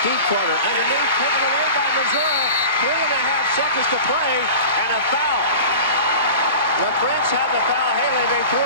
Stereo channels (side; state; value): both; inverted; correlation -0.36